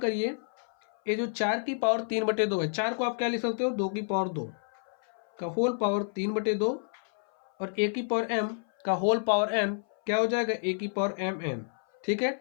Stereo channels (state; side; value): silent; right; 56 dB below the other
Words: ये जो 4 की पावर 3/2 है, 4 को आप क्या लिख सकते हो? 2 की पावर 2 का होल पावर 3/2, और ए की पावर m का होल पावर n क्या हो जाएगा? ए की पावर mn। ठीक है,